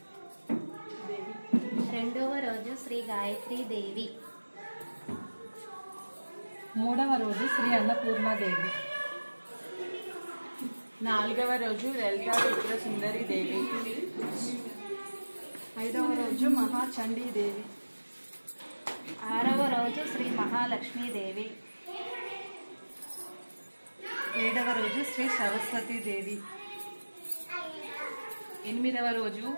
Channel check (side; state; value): both; inverted; correlation -1.00